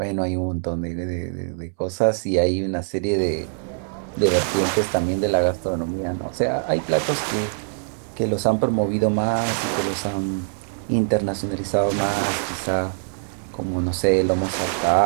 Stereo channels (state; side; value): silent; left; 63 dB below the other